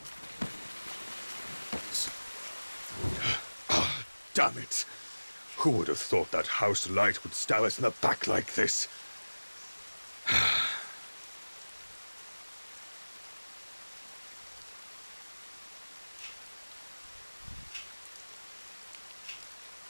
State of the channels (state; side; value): inverted; both; correlation -1.00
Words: person. Damn it! Who would have thought that house light would stab us in the back like this?